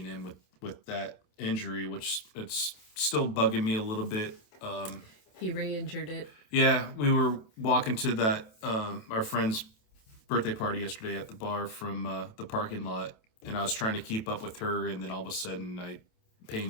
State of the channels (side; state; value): right; late; 28 ms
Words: in with that injury, which it's still bugging me a little bit. He re-injured it. Yeah, we were walking to that our friend's birthday party yesterday at the bar from the parking lot, and I was trying to keep up with her, and then all of a sudden pain